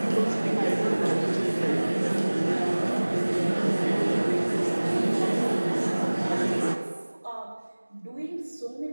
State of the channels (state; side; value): inverted; both; correlation -1.00